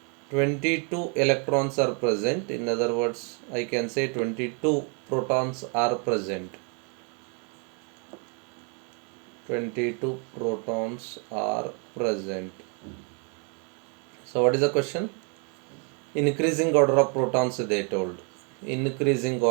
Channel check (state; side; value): quieter; left; 37.4 dB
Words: 22 electrons are present. In other words, I can say 22 protons are present. 22 protons are present. So what is the question? Increasing order of protons they told. Increasing